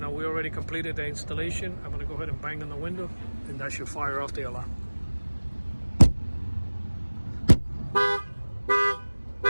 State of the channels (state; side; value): inverted; both; correlation -1.00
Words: we already completed the installation. I'm going to go ahead and bang on the window, and that should fire off the alarm.